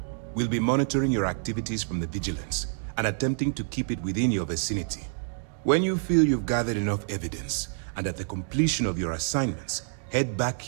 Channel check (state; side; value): silent; left; digital silence